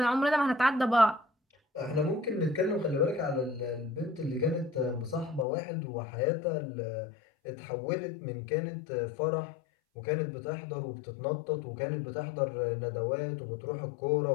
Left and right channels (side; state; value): right; drops out; at 5.5 s